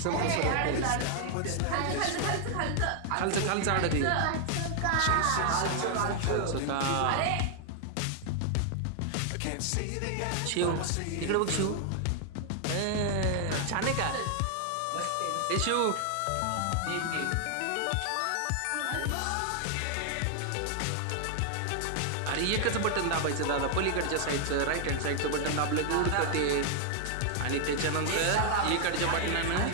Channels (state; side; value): different; both; correlation 0.00